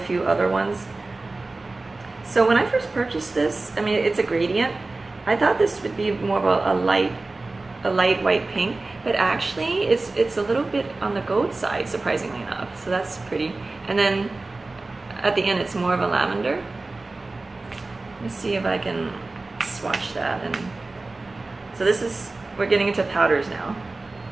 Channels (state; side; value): quieter; left; 3.3 dB